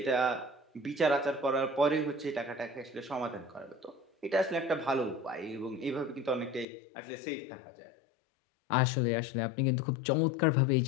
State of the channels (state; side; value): drops out; right; at 6.7 s